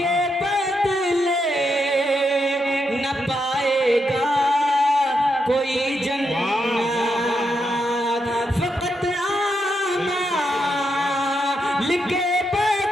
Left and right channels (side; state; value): both; normal; correlation 0.82